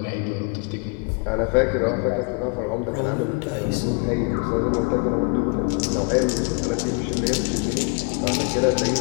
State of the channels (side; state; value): right; quieter; 35.8 dB